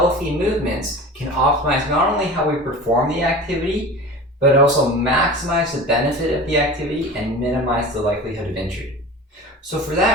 movements can optimize not only how we perform the activity, but also maximize the benefit of the activity and minimize the likelihood of injury. So for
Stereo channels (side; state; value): both; normal; correlation 0.35